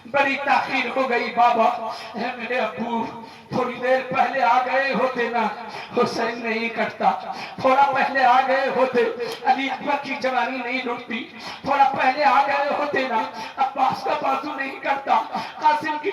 بڑی تاخیر ہو گئی بابا۔ اے میرے ابو تھوڑی دیر پہلے آ گئے ہوتے نا حسین نہیں کٹتا، تھوڑا پہلے آ گئے ہوتے علی اکبر کی جوانی نہیں لٹتی، تھوڑا پہلے آ گئے ہوتے نا عباس کا بازو نہیں کٹتا، قاسم کی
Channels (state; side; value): identical; both; correlation 1.00